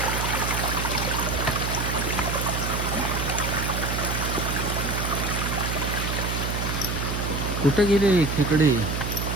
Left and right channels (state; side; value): noise; right; hum, 2 dB below the sound